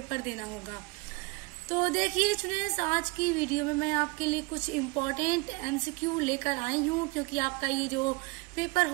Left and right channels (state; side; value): quieter; left; 27.7 dB